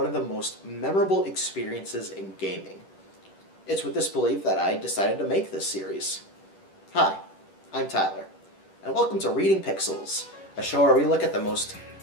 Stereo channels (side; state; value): right; late; 10 ms